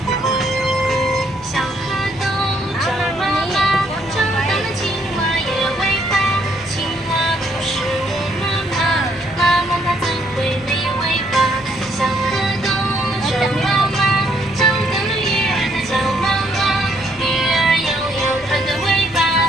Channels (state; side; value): normal; both; correlation 0.70